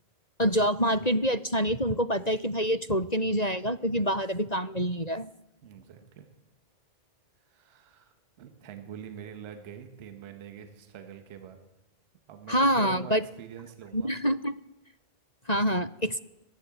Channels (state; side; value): late; right; 1.9 ms